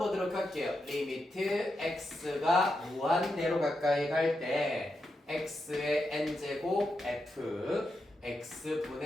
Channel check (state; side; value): normal; both; correlation 0.86